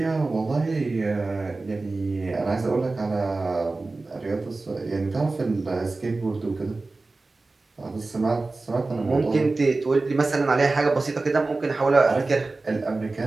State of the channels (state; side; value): quieter; left; 3.4 dB